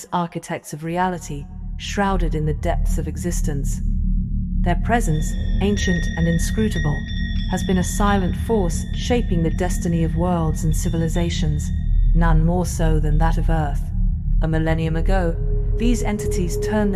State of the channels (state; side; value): identical; both; correlation 1.00